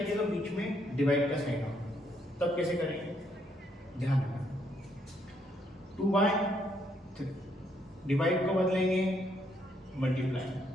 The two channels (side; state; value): both; normal; correlation 0.73